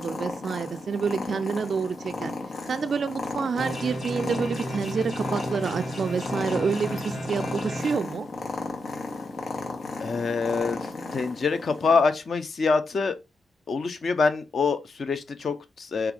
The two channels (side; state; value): both; normal; correlation 0.82